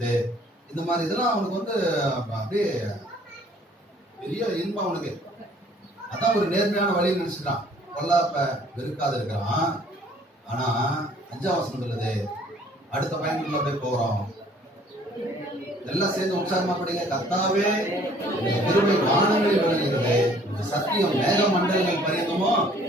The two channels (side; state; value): both; normal; correlation 0.57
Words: இந்த மாதிரி இதெல்லாம் அவனுக்கு வந்து அப்படியே பெரிய இன்பம் அவனுக்கு. அதான் ஒரு நேர்மையான வழின்னு நினைச்சுக்கிறான். பொல்லாப்ப வெறுக்காது இருக்கிறான். ஆனா 5ஆம் வசனம் சொல்லுது, அடுத்த பயனுக்குள்ள அப்படியே போறோம். எல்லாம் சேர்ந்து உற்சாகமா படிங்க. கர்த்தாவே கிருபை வானங்களில் விளங்குகிறது, சத்தியம் மேக மண்டலங்கள் பரியந்தமோ